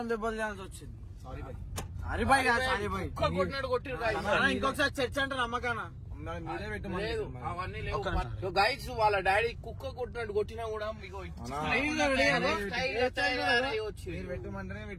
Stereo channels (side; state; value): both; identical; correlation 1.00